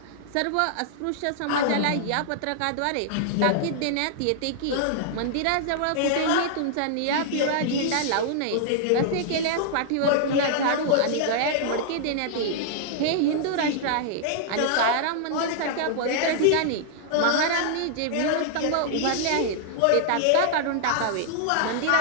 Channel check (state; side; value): different; both; correlation -0.01